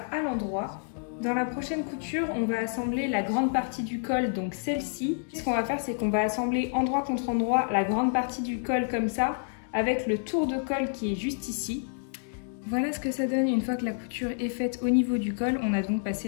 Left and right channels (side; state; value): right; silent; digital silence